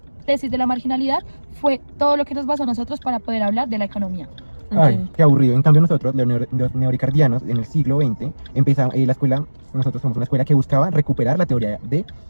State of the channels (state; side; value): inverted; both; correlation -1.00